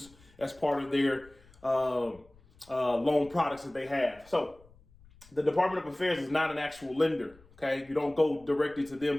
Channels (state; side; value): noise; left; rumble, 27 dB below the sound